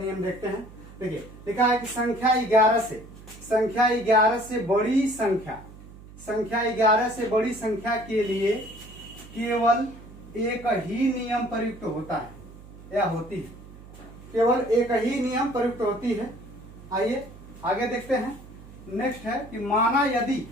देखते हैं। देखिए लिखा है कि संख्या 11 से बड़ी संख्या के लिए केवल एक ही नियम प्रयुक्त होता है या होती है। केवल एक ही नियम प्रयुक्त होती है। आइए आगे देखते हैं। नेक्स्ट है कि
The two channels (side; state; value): right; noise; hum, 18 dB below the sound